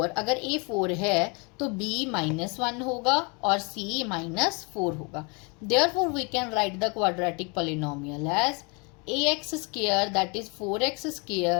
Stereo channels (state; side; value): quieter; right; 31.9 dB